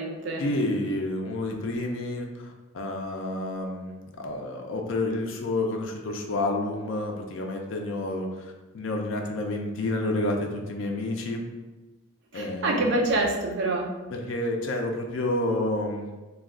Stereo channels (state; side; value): normal; both; correlation 0.26